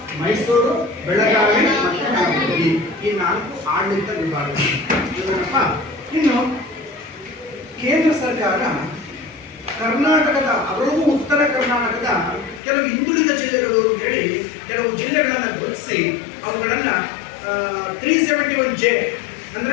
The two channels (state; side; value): drops out; right; at 12.6 s